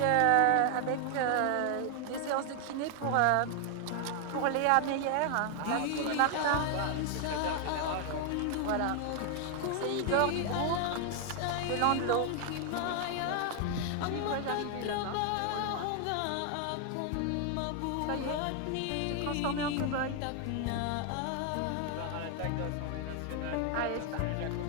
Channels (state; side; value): different; both; correlation 0.00